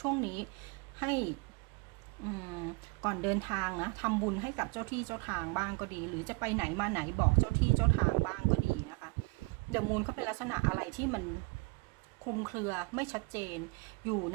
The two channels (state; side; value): quieter; left; 27.6 dB